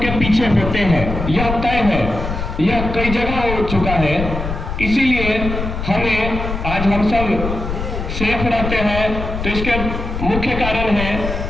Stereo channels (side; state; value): left; noise; rumble, 5 dB below the sound